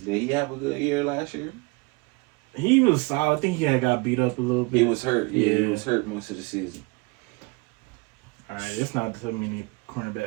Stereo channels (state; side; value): quieter; left; 27.4 dB